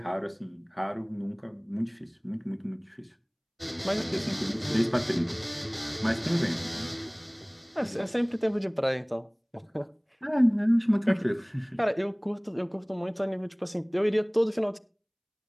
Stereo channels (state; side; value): identical; both; correlation 1.00